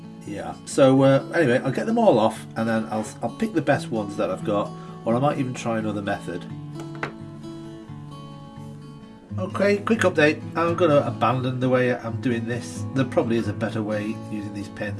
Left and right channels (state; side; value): identical; both; correlation 1.00